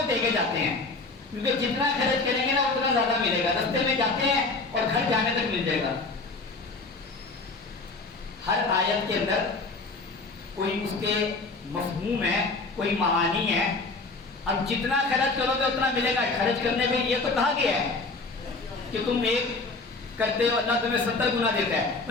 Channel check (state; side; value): quieter; right; 3.7 dB